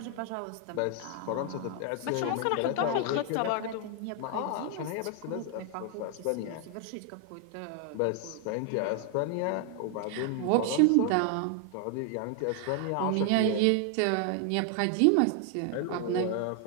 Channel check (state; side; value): different; both; correlation 0.00